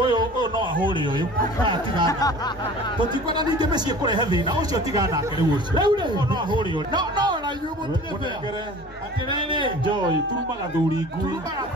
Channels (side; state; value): both; normal; correlation 0.43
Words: uyu no ahuri uyu tiga tutikwana ninge mecie kurehe thina ucio tiga nake riu ucio no ahuri uyu no na yubu munengere atirene joy turumaga thuri ngui